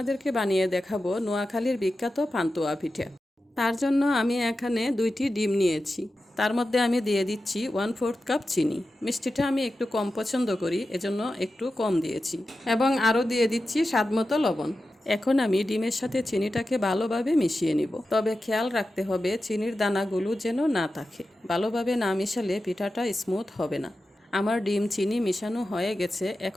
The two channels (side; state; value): both; normal; correlation 0.92